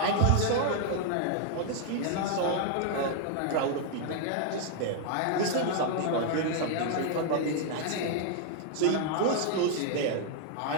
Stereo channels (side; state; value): both; different; correlation -0.01